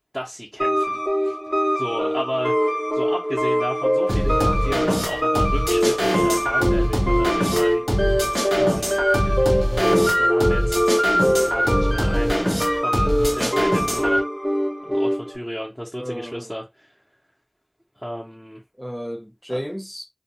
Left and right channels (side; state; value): both; identical; correlation 1.00